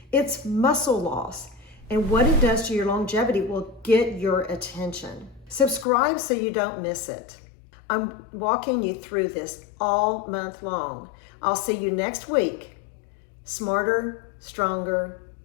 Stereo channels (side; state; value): right; drops out; at 5.9 s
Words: It's muscle loss, and what it does to your longevity will get your attention. Subscribe so you don't miss it. I'm walking you through this all month long. I'll see you next week. Smarter, stronger,